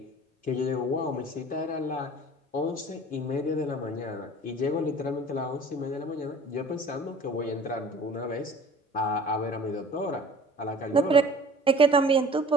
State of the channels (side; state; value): both; normal; correlation 0.46